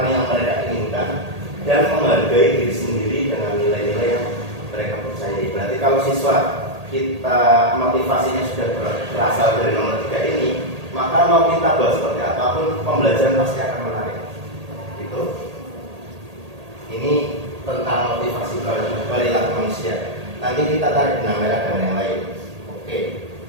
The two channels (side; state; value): left; late; 1.8 ms